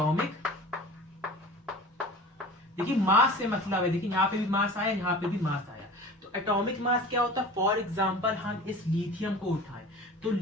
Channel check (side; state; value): both; normal; correlation 0.39